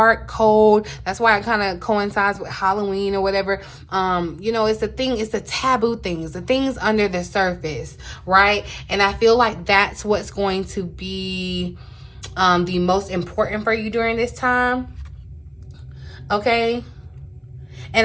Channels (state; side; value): identical; both; correlation 1.00